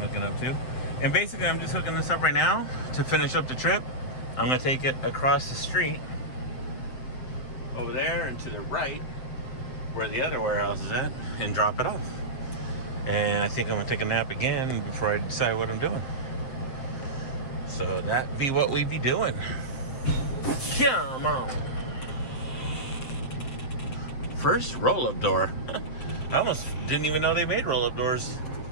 up to. And basically I'm just hooking this up right now to finish up the trip. I'm gonna take it across the street over there and to the right where the other warehouse is at and drop it off. And I think I'm gonna take a nap again before I decide what I'm doing. So that be what we be doing. Come on. First roll-up door. I almost didn't even know they made roll-up doors.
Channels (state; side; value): late; right; 7.7 ms